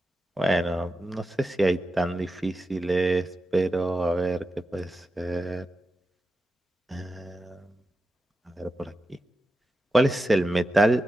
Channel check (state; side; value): normal; both; correlation 0.90